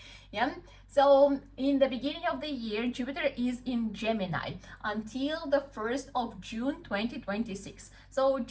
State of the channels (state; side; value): identical; both; correlation 1.00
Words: Yeah, so in the beginning of the year, Jupiter is in Gemini until the 1st of June 2026. So